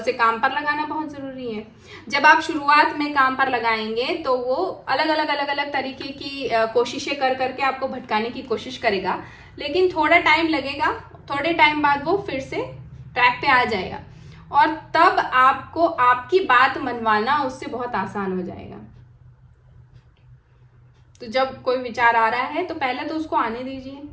काम पर लगाना बहुत जरूरी है। जब आप शुरुआत में काम पर लगाएंगे तो वो अलग अलग तरीके की कोशिशें कर करके आपको भटकाने की कोशिश करेगा, लेकिन थोड़ा टाइम लगेगा, थोड़े टाइम बाद वो फिर से ट्रैक पे आ जाएगा, और तब आपको आपकी बात मनवाना उससे बहुत आसान हो जाएगा। तो जब कोई विचार आ रहा है तो पहले तो उसको आने दीजिए,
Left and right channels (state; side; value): identical; both; correlation 1.00